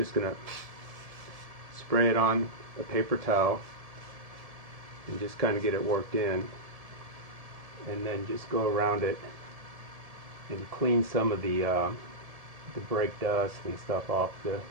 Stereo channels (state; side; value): late; left; 1.7 ms